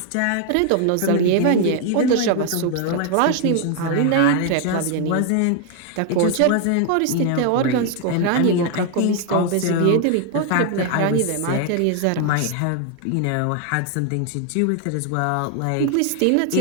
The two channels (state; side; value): different; both; correlation 0.00